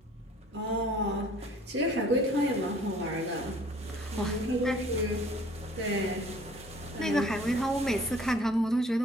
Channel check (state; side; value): normal; both; correlation 0.53